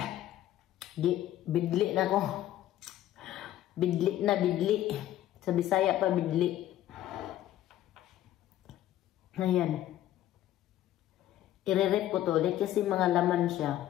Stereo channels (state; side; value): quieter; right; 13.1 dB